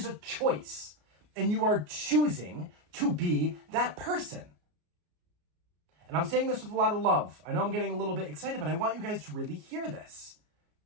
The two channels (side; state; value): left; late; 33 ms